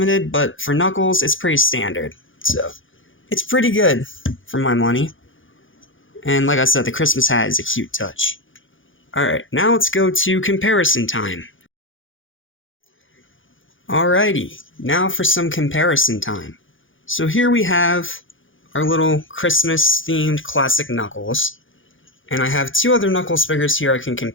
but for Knuckles, it's pretty standard. So, it's pretty good, for my money. And like I said, the Christmas hat is a cute touch. Alright, now let's go to comparison time. Alrighty, now for some comparison time. So here we have our little Christmas-themed classic Knuckles. And I have two other Knuckles figures here I can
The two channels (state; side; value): late; right; 0.57 ms